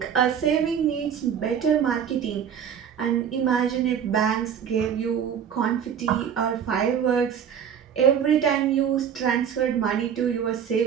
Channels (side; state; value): left; quieter; 8.2 dB